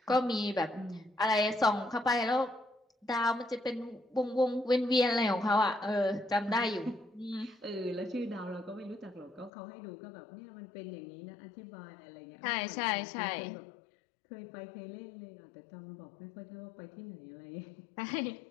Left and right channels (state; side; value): drops out; right; at 9.5 s